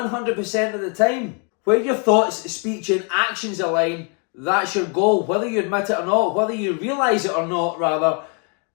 of the time. Where your thoughts, speech and actions align, that's your goal, whether you admit it or not, whether you realise it or not, rather.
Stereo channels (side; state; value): right; quieter; 36.5 dB